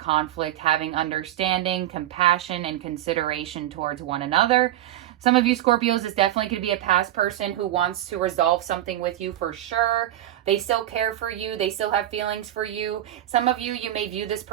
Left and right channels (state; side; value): quieter; left; 13.2 dB